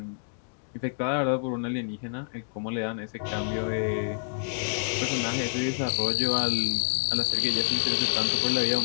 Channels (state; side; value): silent; right; 59 dB below the other